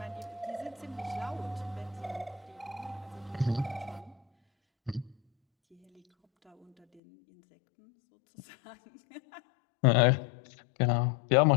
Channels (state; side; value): drops out; right; at 7.0 s